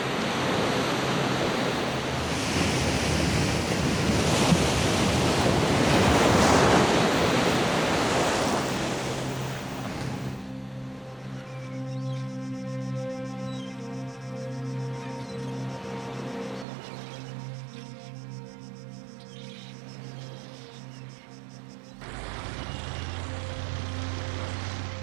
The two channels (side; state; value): left; drops out; at 16.7 s